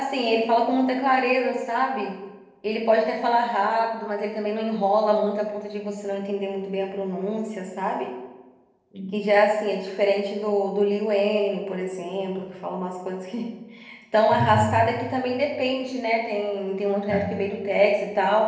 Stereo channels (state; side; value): identical; both; correlation 1.00